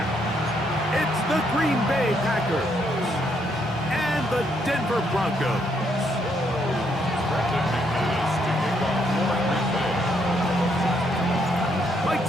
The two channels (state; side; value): normal; both; correlation 0.73